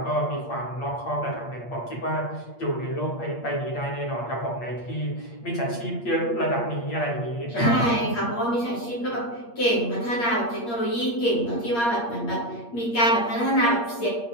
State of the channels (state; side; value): late; right; 8.5 ms